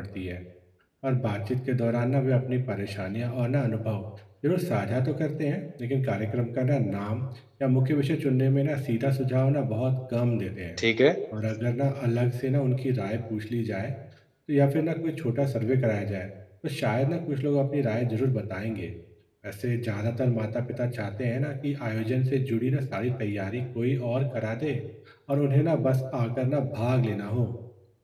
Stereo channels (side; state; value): both; identical; correlation 1.00